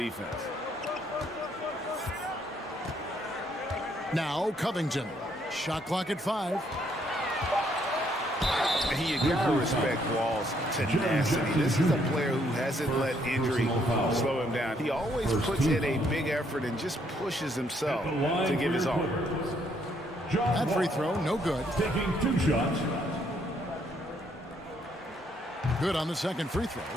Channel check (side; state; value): both; normal; correlation 0.70